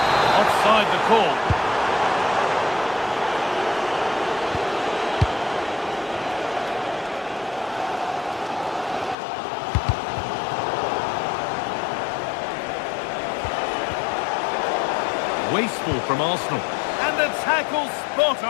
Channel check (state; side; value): drops out; right; at 9.2 s